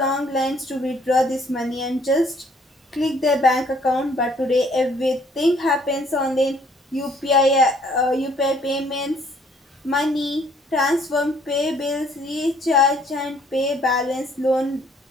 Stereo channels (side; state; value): both; normal; correlation 0.62